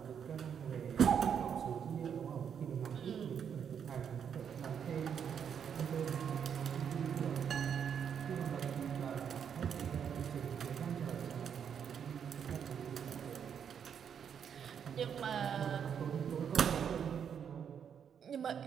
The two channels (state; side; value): quieter; left; 7.8 dB